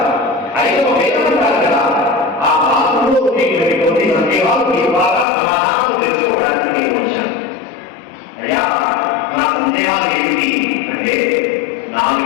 ఐదవ వేదం అంటారు కదా, ఆ భారతంలో కొన్ని సందేహాలు మీ ద్వారా సమాధానం తెలుసుకోవడానికి నేను వచ్చాను. అయ్యా నా సందేహాలు ఏమిటి అంటే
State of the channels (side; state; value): right; drops out; at 5.2 s